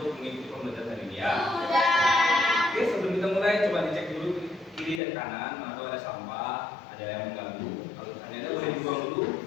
mengikuti pembelajaran hari ini ya? Sudah. Oke, sebelum kita mulai coba dicek dulu kiri dan kanan, mana tahu ada sampah, ada yang mengganggu. Kalau misalnya ada boleh dibuang dulu.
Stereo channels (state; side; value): drops out; right; at 5.0 s